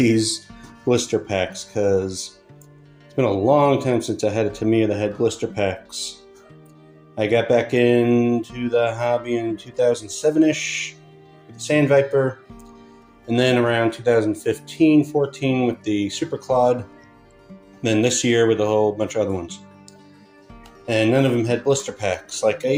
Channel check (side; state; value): both; identical; correlation 1.00